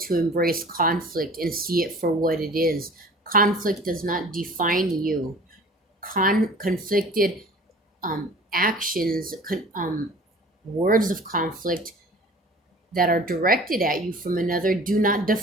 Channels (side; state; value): both; normal; correlation 0.45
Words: embrace conflict and see it for what it is. Conflict does not define you. Conflicted actions, words of conflict that are directed at you from another do not